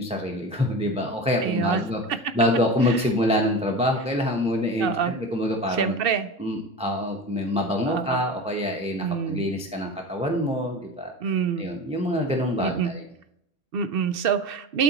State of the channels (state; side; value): normal; both; correlation 0.30